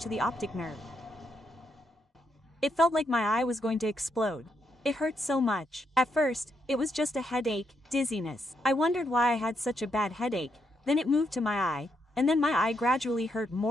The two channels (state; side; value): normal; both; correlation 0.79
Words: the optic nerve. It felt like my eye was going to explode. It hurt so much. At first, it was just a headache, dizziness. I wondered why I had such a bad headache, then it moved to my eye, and then my eye gradually hurt